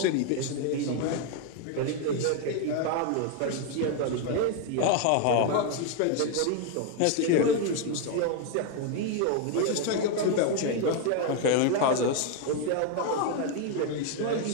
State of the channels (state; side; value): different; both; correlation 0.01